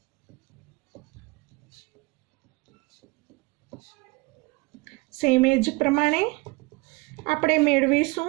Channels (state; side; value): quieter; left; 25.2 dB